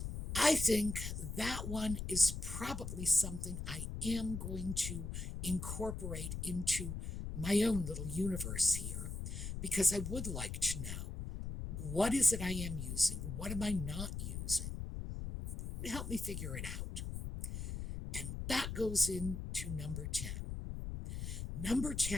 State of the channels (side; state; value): left; noise; rumble, 5 dB below the sound